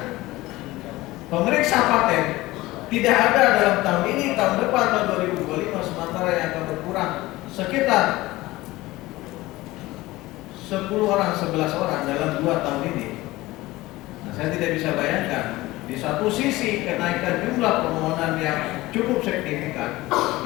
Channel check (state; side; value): quieter; right; 18.8 dB